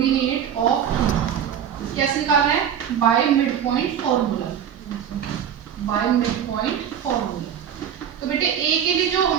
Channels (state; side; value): quieter; left; 8.9 dB